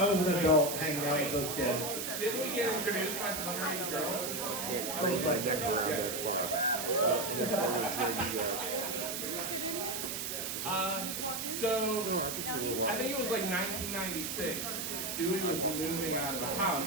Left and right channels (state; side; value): noise; right; hiss, 3 dB below the sound